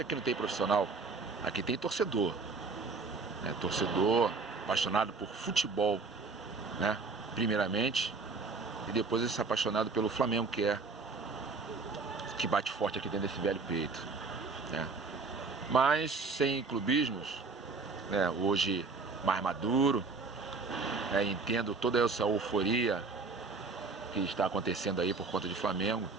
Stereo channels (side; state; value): left; quieter; 4.2 dB